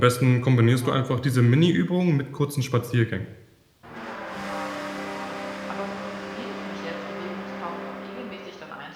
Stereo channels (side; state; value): both; identical; correlation 1.00